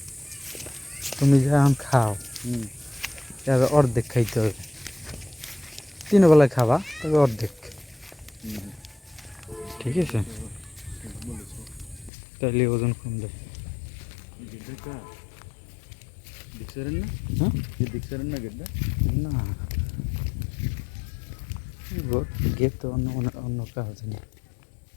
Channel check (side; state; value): right; drops out; at 12.1 s